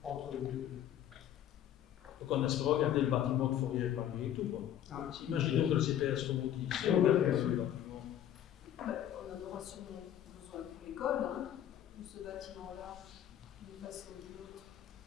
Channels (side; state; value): right; quieter; 10.9 dB